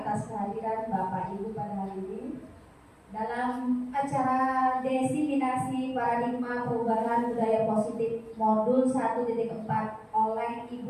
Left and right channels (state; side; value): identical; both; correlation 1.00